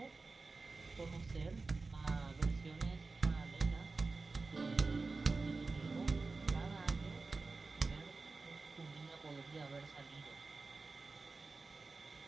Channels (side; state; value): left; quieter; 3.9 dB